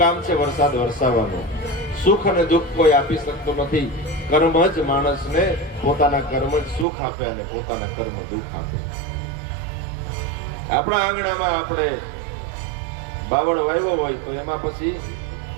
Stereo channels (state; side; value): drops out; left; at 6.9 s